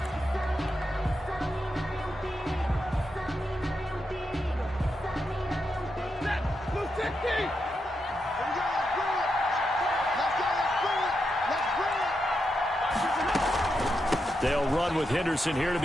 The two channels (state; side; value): normal; both; correlation 0.85